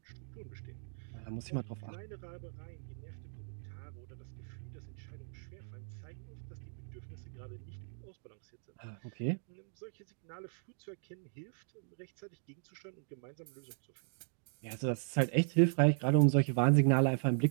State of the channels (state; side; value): silent; left; digital silence